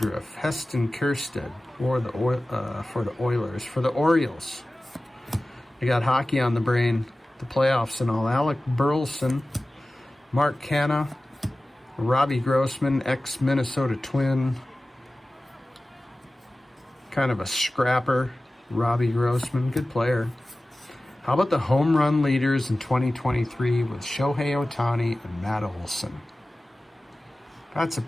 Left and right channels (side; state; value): both; normal; correlation 0.96